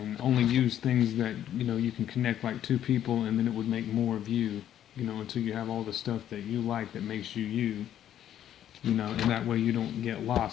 only use things that you can connect like two people, and then it would make more of you, until you have all the stuff that you like that makes you you. And that way you don't get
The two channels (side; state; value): right; quieter; 10.8 dB